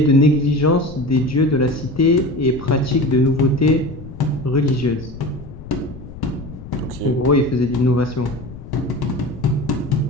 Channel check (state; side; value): noise; left; rumble, 14 dB below the sound